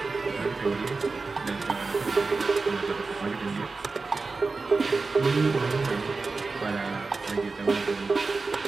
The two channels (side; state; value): left; quieter; 4.0 dB